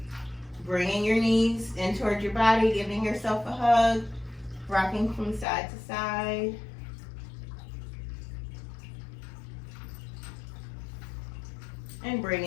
Bringing your knees in towards your body, giving yourself a hug, rocking from side to side. And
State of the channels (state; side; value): drops out; right; at 5.5 s